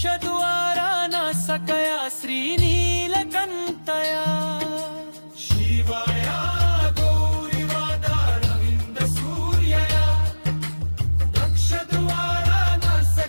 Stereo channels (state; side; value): inverted; both; correlation -1.00